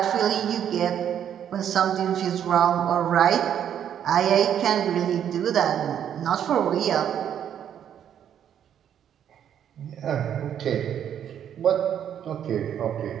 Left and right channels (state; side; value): quieter; left; 9.5 dB